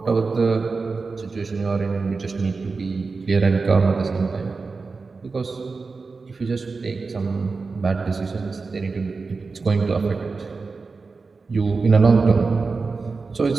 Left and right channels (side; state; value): left; quieter; 4.3 dB